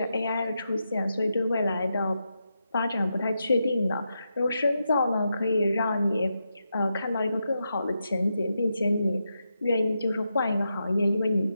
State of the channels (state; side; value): inverted; both; correlation -0.86